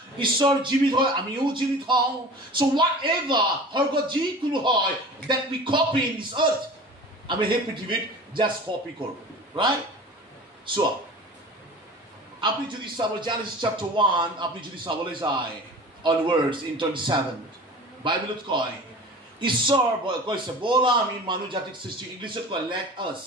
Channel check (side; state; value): both; normal; correlation 0.39